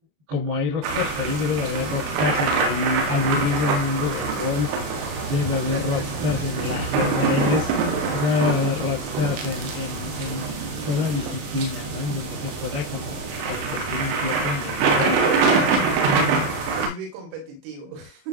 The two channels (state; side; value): late; left; 28 ms